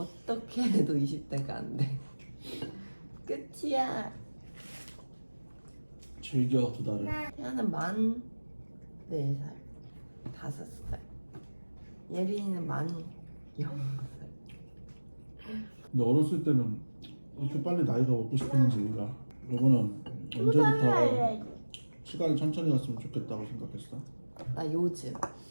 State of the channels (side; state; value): both; inverted; correlation -1.00